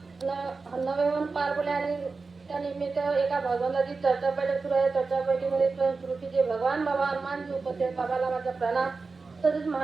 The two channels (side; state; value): left; quieter; 4.2 dB